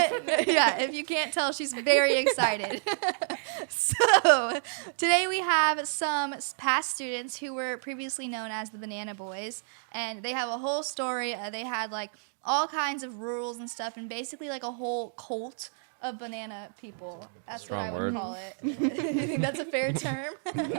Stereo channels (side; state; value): left; silent; digital silence